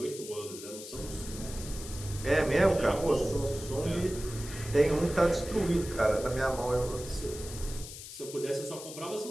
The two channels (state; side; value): noise; left; hiss, 12 dB below the sound